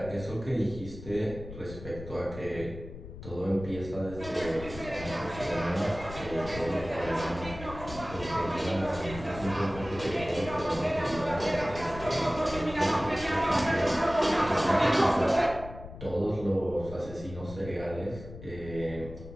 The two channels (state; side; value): noise; left; rumble, 12 dB below the sound